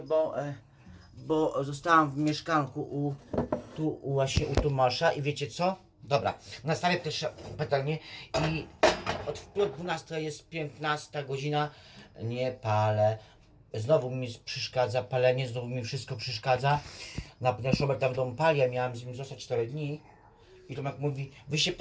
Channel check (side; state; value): both; identical; correlation 1.00